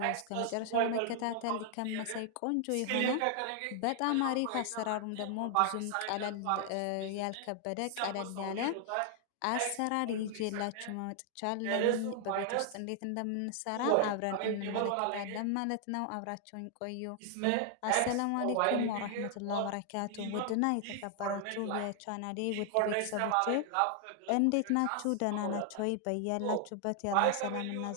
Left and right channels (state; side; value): different; both; correlation 0.00